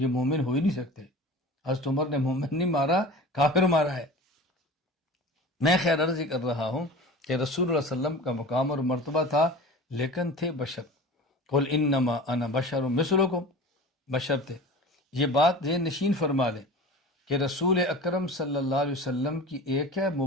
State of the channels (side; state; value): both; normal; correlation 0.36